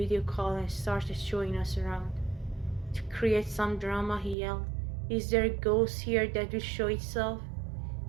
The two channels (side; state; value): left; drops out; at 4.4 s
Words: call and started showing us around. To create some drama, he yelled, "Is there a ghost here that will show itself?"